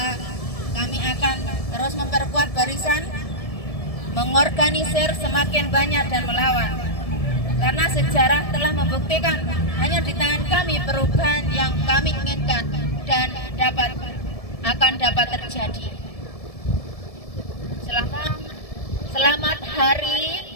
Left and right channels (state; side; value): late; right; 1.7 ms